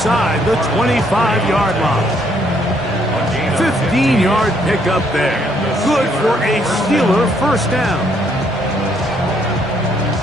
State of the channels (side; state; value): both; normal; correlation 0.69